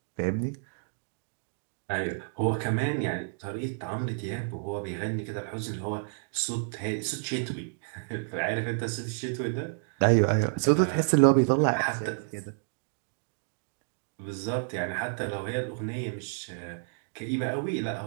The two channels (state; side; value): silent; left; digital silence